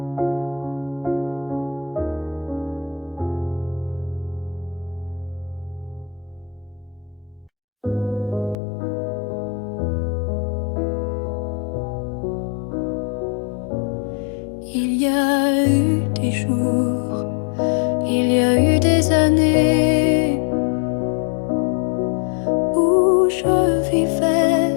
Il y a eu des jours, il y a eu des années où je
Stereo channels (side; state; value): right; drops out; at 8.6 s